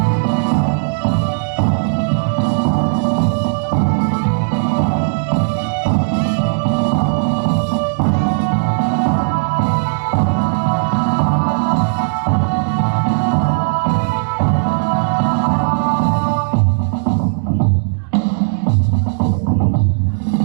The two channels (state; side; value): silent; left; digital silence